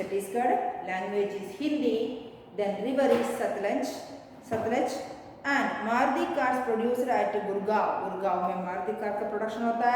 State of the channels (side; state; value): both; identical; correlation 1.00